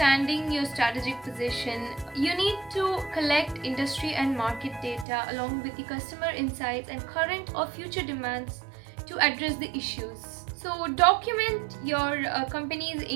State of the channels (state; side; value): drops out; left; at 5.1 s